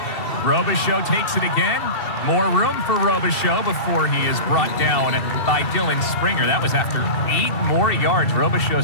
Robichaux takes it again. More room for Robichaux before he is brought down by Dylan Springer. That was after 8 more yards.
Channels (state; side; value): late; right; 2.7 ms